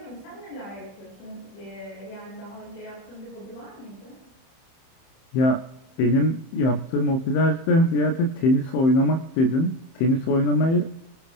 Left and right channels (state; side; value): late; right; 31 ms